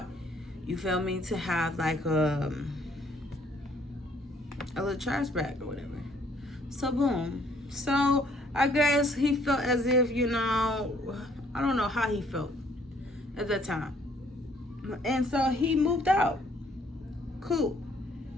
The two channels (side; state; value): both; normal; correlation 0.63